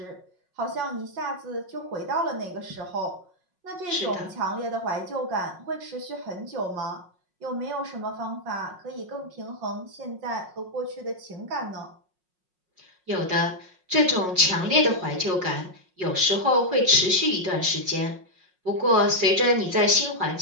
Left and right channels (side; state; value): left; late; 5.5 ms